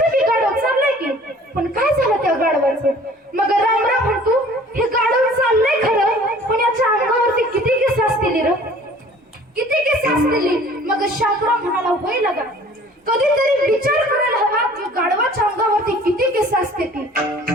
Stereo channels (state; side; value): normal; both; correlation 0.50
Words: बसायचं. मग रामराव म्हणतो हे गाढव चाललंय खरं, पण याच्या अंगावरती किती केस असतील र, किती केस असतील. मग शामराव म्हणाला होय लगा, कधीतरी विचार करायला हवा की गाढवाच्या अंगावरती किती केस असते ती.